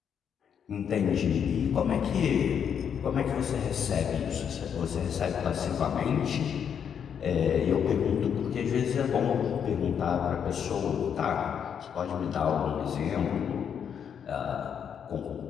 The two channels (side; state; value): right; quieter; 7.9 dB